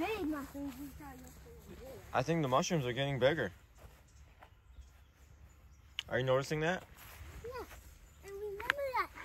Big mushrooms. I think the mushrooms are getting bigger. Are you noticing that? Yes. And remember that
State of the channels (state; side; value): identical; both; correlation 1.00